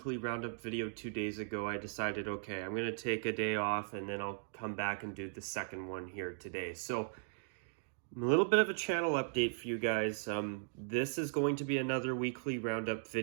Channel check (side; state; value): left; silent; digital silence